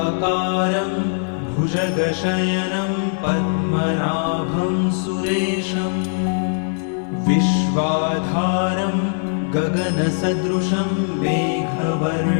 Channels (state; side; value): silent; right; 65 dB below the other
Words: भुजगशयनं पद्मनाभं सुरेशं विश्वाधारं गगनसदृशं